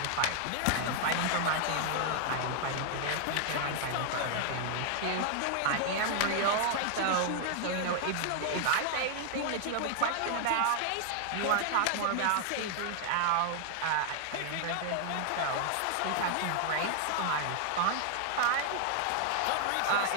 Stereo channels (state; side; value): different; both; correlation 0.00